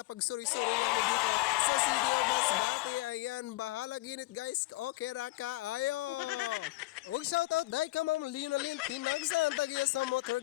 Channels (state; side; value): quieter; right; 20.2 dB